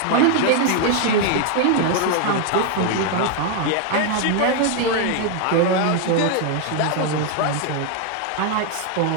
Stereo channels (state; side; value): different; both; correlation 0.00